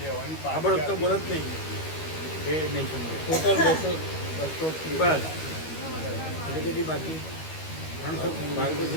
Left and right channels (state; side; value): late; right; 13 ms